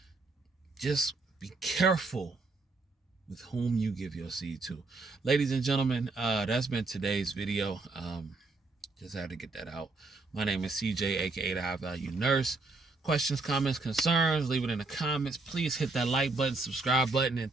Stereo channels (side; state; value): left; quieter; 3.5 dB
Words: just be careful with whom you give your seed to. Ladies and gentlemen, that's been today's video. Just had to get that out. My name is CJ, aka the High Value Nurse. Questions, comments, concerns, leave it in the comments. Please hit that like button, subscribe button.